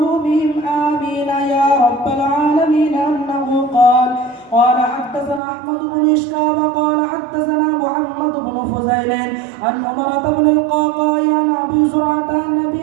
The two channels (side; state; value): left; drops out; at 5.4 s